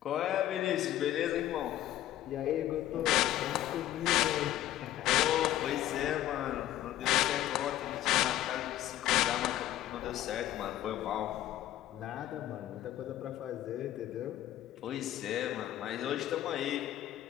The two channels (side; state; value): right; quieter; 13.3 dB